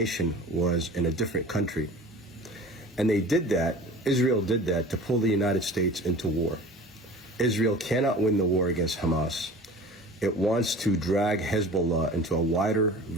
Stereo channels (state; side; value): normal; both; correlation 0.41